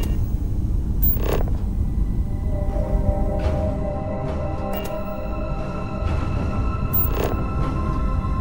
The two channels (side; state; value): both; identical; correlation 1.00